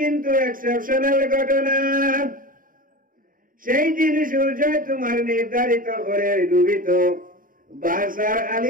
এক্সেপশনাল ঘটনা, সেই দিন সূর্য তোমার নির্ধারিত করে ডুবিত, বাসার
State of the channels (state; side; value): late; left; 0.40 ms